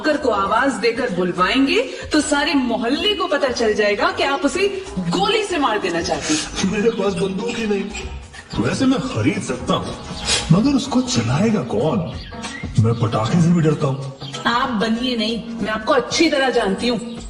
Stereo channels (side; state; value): both; identical; correlation 1.00